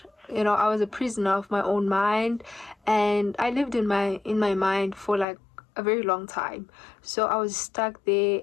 I was a prisoner of my own mind, and I lived in my mind for like a very long time. So I was stuck there,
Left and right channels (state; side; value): drops out; right; at 5.2 s